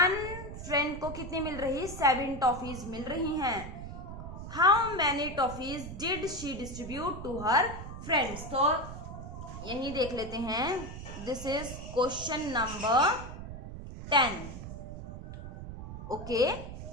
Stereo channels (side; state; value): right; noise; rumble, 9 dB below the sound